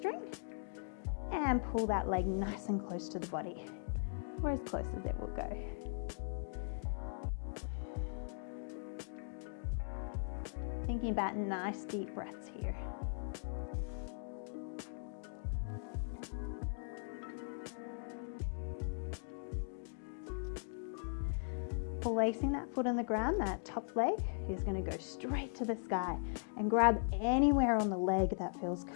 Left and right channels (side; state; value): right; silent; digital silence